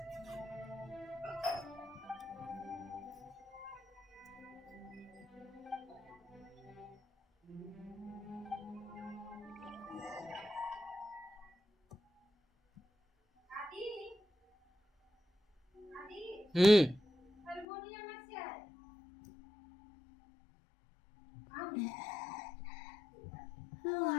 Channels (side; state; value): right; drops out; at 17.7 s